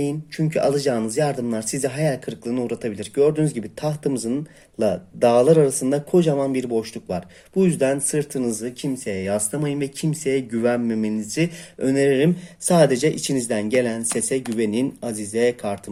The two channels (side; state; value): both; identical; correlation 1.00